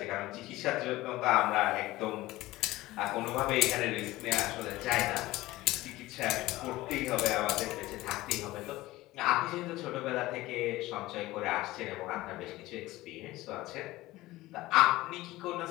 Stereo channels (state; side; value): quieter; right; 18.0 dB